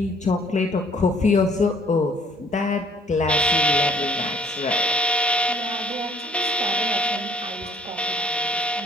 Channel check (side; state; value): both; normal; correlation 0.59